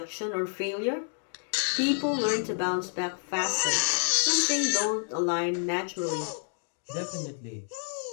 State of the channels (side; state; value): right; silent; 59 dB below the other